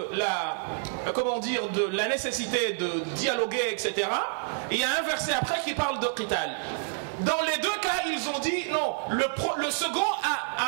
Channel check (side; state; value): left; silent; digital silence